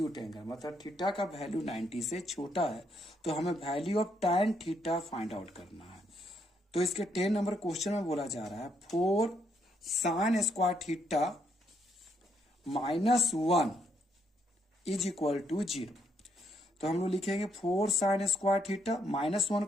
एंगल, मतलब थीटा का वैल्यू 90 से छोटा है। तो हमें value of tan theta find out करना है। तो इसके 10 नंबर क्वेश्चन में बोला जा रहा है 4 sin square theta -1 is equal to 0। तो हम लोग लिखेंगे 4 sin स्क्वायर थीटा -1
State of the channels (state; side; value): normal; both; correlation 0.74